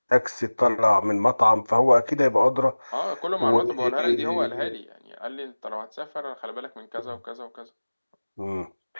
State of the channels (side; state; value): both; inverted; correlation -1.00